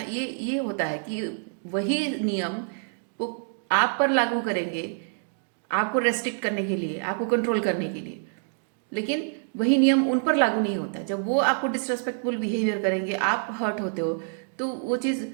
होता है कि वही नियम वो आप पर लागू करेंगे, आपको रेस्ट्रिक्ट करने के लिए, आपको कंट्रोल करने के लिए, लेकिन वही नियम उन पर लागू नहीं होता। जब वो आपको डिसरेस्पेक्टफुल बिहेवियर करेंगे, आप हर्ट होते हो, तो वो चीज़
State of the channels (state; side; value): silent; left; digital silence